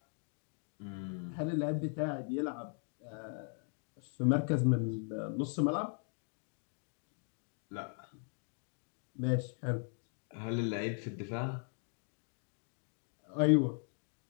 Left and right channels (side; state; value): right; silent; 52 dB below the other